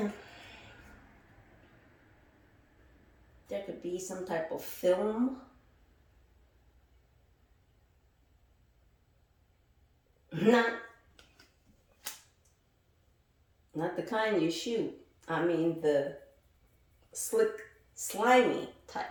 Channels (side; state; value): both; identical; correlation 1.00